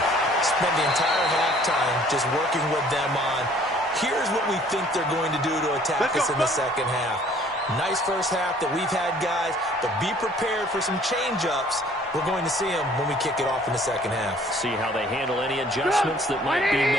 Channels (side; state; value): both; normal; correlation 0.56